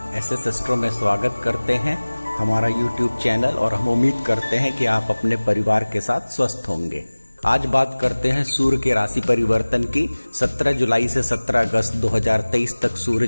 एसएस एस्ट्रो में स्वागत करते हैं, हमारा यूट्यूब चैनल। और हम उम्मीद करते हैं कि आप अपने परिवार के साथ स्वस्थ होंगे। आज बात करते हैं सूर्य के राशि परिवर्तन की। 17 जुलाई से 17 अगस्त 2023 तक सूर्य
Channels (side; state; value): both; inverted; correlation -1.00